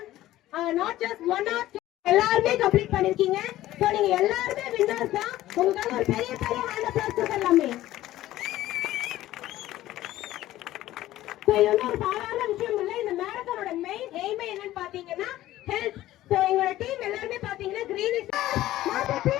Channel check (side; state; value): right; quieter; 14.9 dB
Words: நாட் ஜஸ்ட் 1 or 2 எல்லாருமே கம்ப்ளீட் பண்ணிருக்கீங்க. சோ நீங்க எல்லாருமே வின்னர்ஸ் தான். உங்களுக்காக ஒரு பெரிய பெரிய ஹேண்ட் அப்ளாஸ் கொடுக்கலாமே. சோ இது ஒரு சாதாரண விஷயம் இல்ல. இந்த மேரத்தானோட மெயின் எய்மே என்னன்னு பாத்தீங்கன்னா ஹெல்த். சோ எங்களோட டீம் எல்லாருமே பாத்தீங்கன்னா green is not a